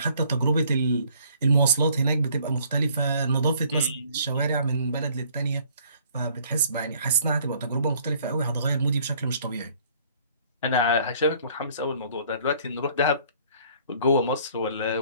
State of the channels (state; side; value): inverted; both; correlation -0.59